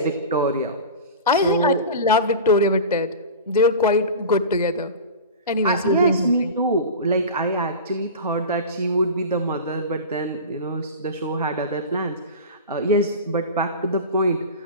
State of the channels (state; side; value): inverted; both; correlation -0.31